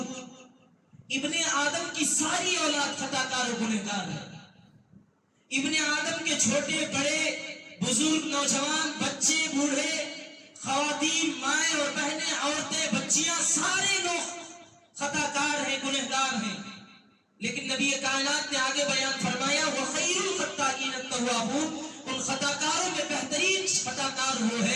ابن آدم کی ساری اولاد خطا کار و گنہگار ہے. ابن آدم کے چھوٹے بڑے، بزرگ، نوجوان، بچے، بوڑھے، خواتین، مائیں اور بہنیں، عورتیں، بچیاں، سارے لوگ خطا کار ہیں، گنہگار ہیں. لیکن نبی کائنات نے آگے بیان فرمایا وَخَيْرُ الْخَطَّائِينَ التَّوَّابُونَ، ان خطا کاروں میں بہترین خطا کار وہ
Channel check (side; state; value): both; identical; correlation 1.00